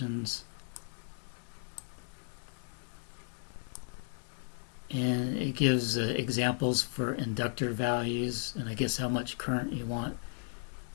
And it gives examples for inductor values, and I guess how much current you want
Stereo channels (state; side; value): silent; right; digital silence